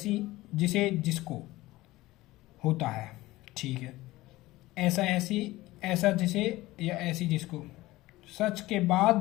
जिसे, जिसको होता है, ठीक है। ऐसा, ऐसी, ऐसा जिसे या ऐसी जिसको। सच के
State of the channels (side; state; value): right; quieter; 18.3 dB